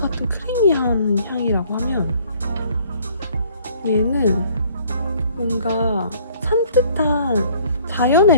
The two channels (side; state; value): both; inverted; correlation -0.58